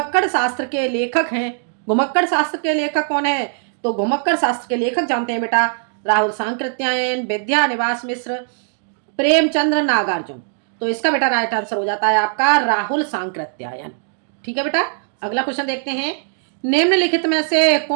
शास्त्र के लेखक हैं। घुमक्कड़ शास्त्र के लेखक कौन है? तो घुमक्कड़ शास्त्र के लेखक जानते हैं बेटा, राहुल सांकृत्यायन, विद्यानिवास मिश्र, प्रेमचंद्र, नागार्जुन। तो इसका बेटा राइट आंसर हो जाता है आपका राहुल सांकृत्यायन। ठीक है बेटा, अगला क्वेश्चन देखते हैं। निम्नलिखित में से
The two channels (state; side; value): silent; left; digital silence